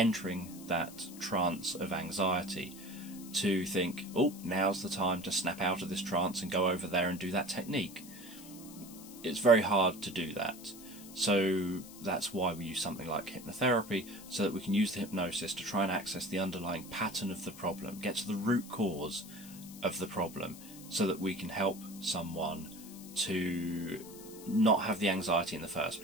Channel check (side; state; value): left; noise; hiss, 17 dB below the sound